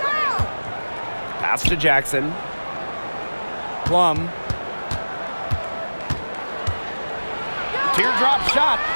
Pass to Jackson. Plum. Teardrop shot.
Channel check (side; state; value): both; inverted; correlation -1.00